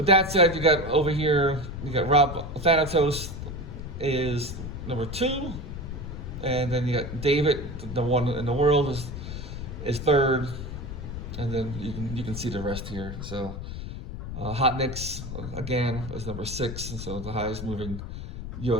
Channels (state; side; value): noise; left; rumble, 8 dB below the sound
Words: that said, you got over here, you got Rob Thanatos is number 2, and then you got David, the one in the world, is 3rd, and then you can see the rest here. So Hot Nicks again is number 6, and so the highest moving